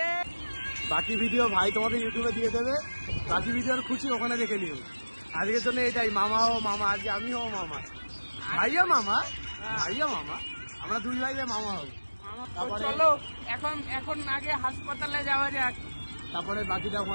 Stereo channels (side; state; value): both; inverted; correlation -1.00